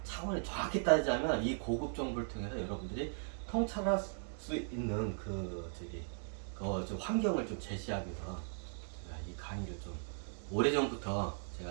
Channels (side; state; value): left; silent; digital silence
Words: 차원에 정확히 따지자면 이 고급 정보를 통해서 여러분들이 통찰할 수 있는 그 저기 좀 환경을 좀 제시하기 위해서 제가 이 강의를 좀 오래전부터